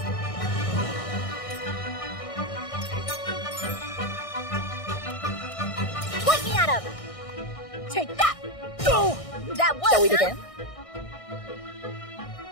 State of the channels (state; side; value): late; right; 1.6 ms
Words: Pointing at him. Take that. Go! That was. Shall we begin?